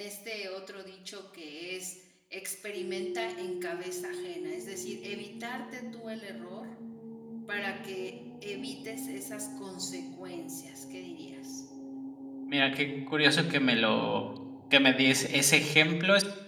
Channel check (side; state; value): both; identical; correlation 1.00